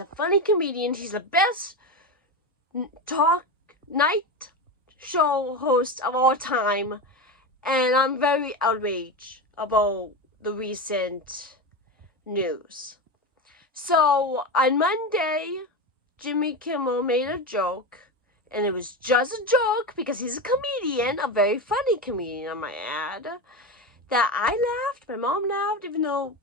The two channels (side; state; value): both; normal; correlation 0.19